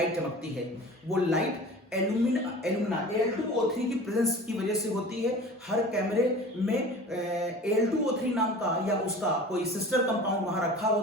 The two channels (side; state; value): both; normal; correlation 0.40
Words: चमकती है, वो लाइट एल्यूमिना Al2O3 की प्रेजेंस की वजह से होती है। हर कैमरे में Al2O3 नाम का या उसका कोई सिस्टर कंपाउंड वहां रखा